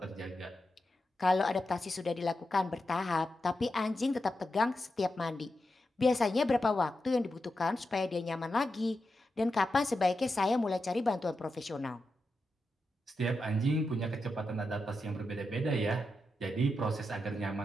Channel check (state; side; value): normal; both; correlation 0.88